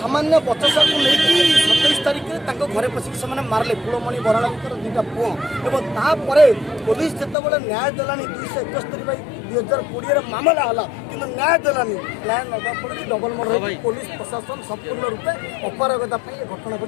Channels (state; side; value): drops out; right; at 7.4 s